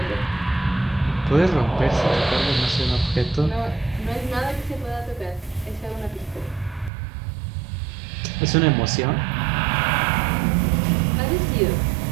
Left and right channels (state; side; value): drops out; left; at 6.9 s